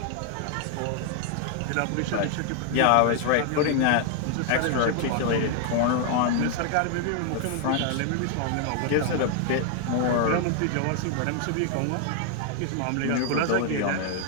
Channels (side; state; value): both; different; correlation 0.00